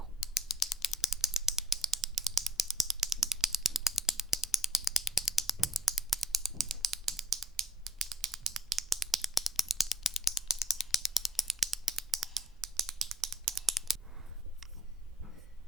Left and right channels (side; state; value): both; normal; correlation 0.62